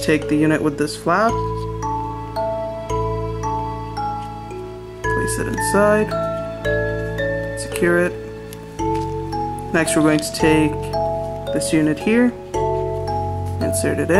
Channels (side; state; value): both; identical; correlation 1.00